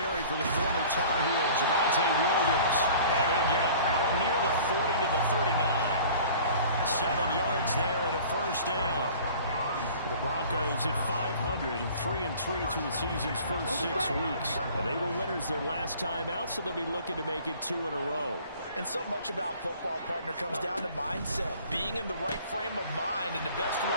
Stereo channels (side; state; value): both; inverted; correlation -0.47